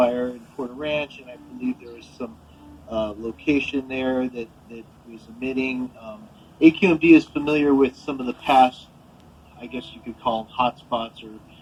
in Porter Ranch, and I believe there was some location there that was emitting. AQMD is familiar with some of the past, I guess you could call them hotspots or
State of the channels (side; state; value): both; identical; correlation 1.00